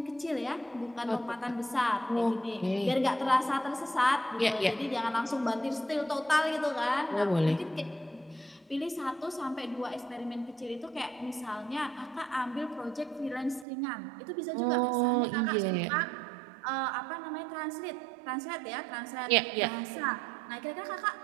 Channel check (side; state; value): left; drops out; at 13.7 s